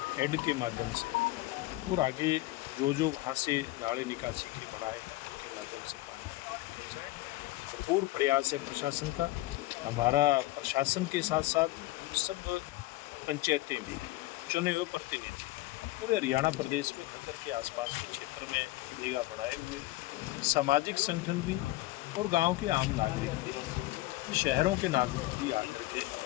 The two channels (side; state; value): right; quieter; 18.2 dB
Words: हेड के माध्यम से और आगे जो वहाँ से नाले निकासी के बनाए हैं उनके माध्यम से पानी आगे निकल जाए। भरपूर प्रयास है प्रशासन का। हमारा प्रशासन के साथ साथ सब पंचायतें भी, चुने हुए प्रतिनिधि पूरे हरियाणा प्रदेश में घग्गर के आसपास के क्षेत्र में निगाह बढ़ाए हुए हैं। सामाजिक संगठन भी और गांव के आम नागरिक भी, शहरों के नागरिक भी आकर के